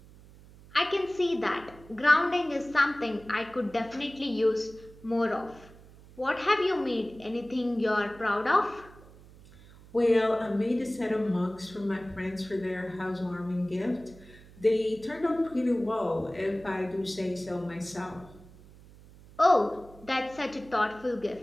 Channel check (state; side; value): noise; right; hum, 22 dB below the sound